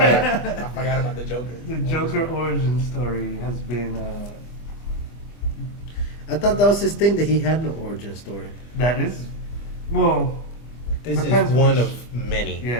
forgot about the Joker. The Joker origin story has been I thought that was his thing that he had no origin story. that is, well, This Depends is one which- of many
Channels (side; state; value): right; late; 25 ms